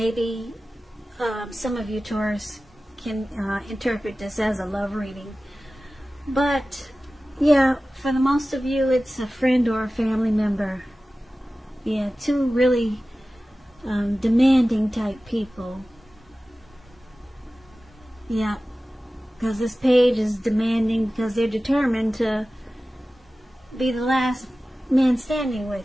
some of you Taurus can interpret this as a love reading. But yeah, for the most of you, it's a friend or a family member. Yeah, 2 really demanding type people. Yeah, because this page is demanding because they're determined to be the last man standing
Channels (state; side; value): normal; both; correlation 0.96